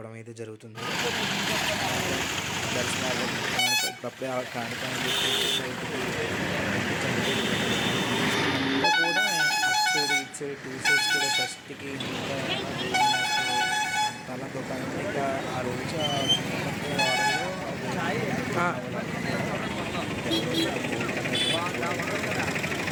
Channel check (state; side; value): identical; both; correlation 1.00